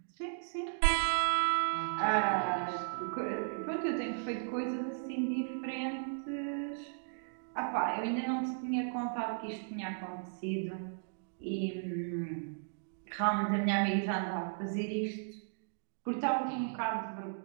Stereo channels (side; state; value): left; silent; digital silence